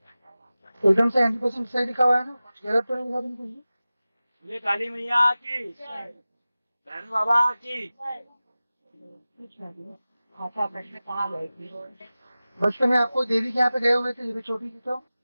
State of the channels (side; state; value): both; inverted; correlation -0.96